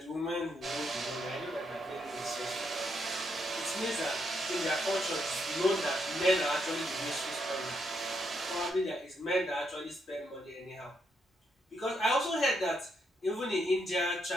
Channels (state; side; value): normal; both; correlation 0.78